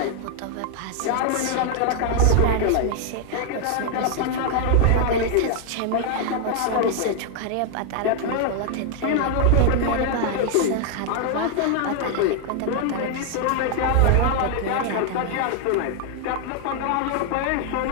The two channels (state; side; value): different; both; correlation 0.00